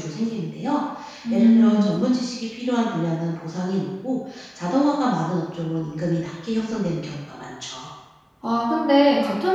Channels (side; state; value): both; identical; correlation 1.00